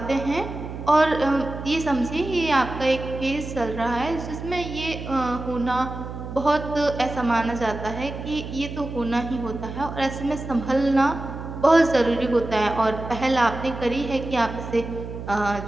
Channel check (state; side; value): noise; right; hum, 9 dB below the sound